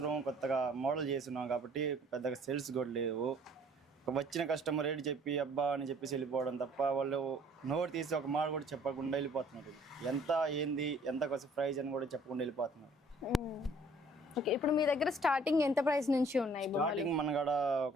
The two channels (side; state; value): both; normal; correlation 0.57